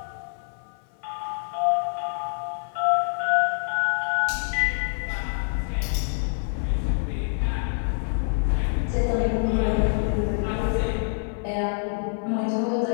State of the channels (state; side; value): silent; right; 57 dB below the other